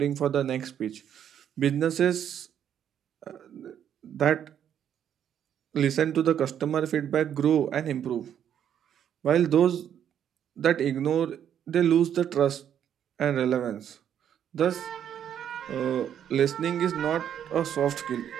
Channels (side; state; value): left; quieter; 9.4 dB